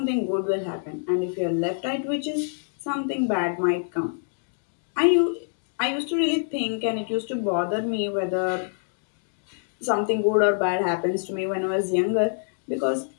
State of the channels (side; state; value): right; silent; digital silence